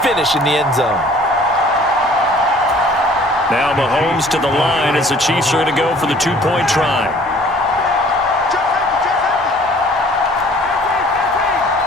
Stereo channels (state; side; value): normal; both; correlation 0.53